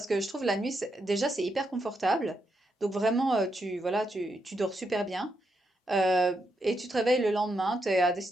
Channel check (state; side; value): normal; both; correlation 0.82